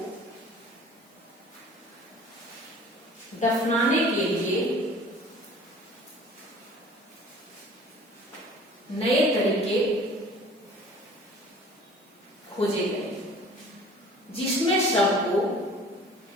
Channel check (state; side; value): normal; both; correlation 0.47